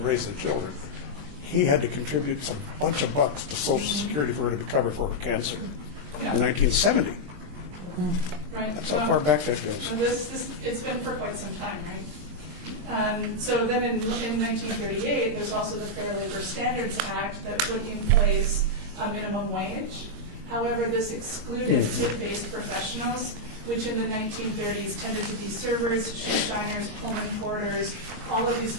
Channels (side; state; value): left; late; 22 ms